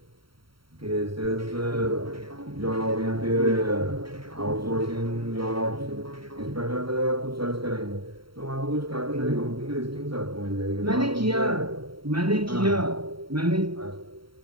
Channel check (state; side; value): late; left; 0.74 ms